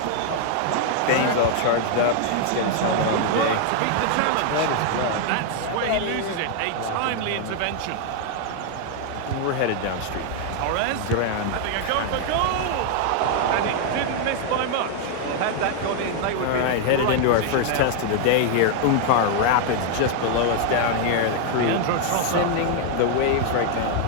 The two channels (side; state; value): both; different; correlation 0.00